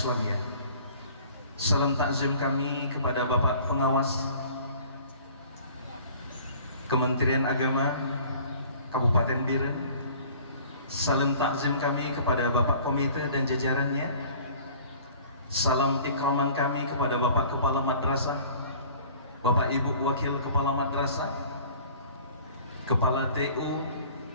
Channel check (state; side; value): inverted; both; correlation -0.49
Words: Salam takzim kami kepada Bapak Pengawas Kementerian Agama Kabupaten Biren. Salam takzim kami kepada Bapak Komite dan jajarannya. Salam ikraman kami kepada Bapak Kepala Madrasah, Bapak Ibu Wakil Kepala Madrasah, Kepala TU